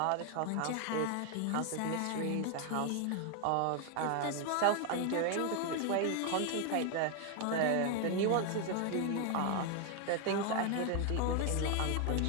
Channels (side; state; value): both; different; correlation 0.01